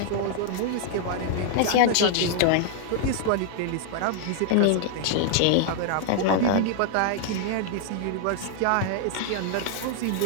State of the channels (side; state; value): both; different; correlation -0.01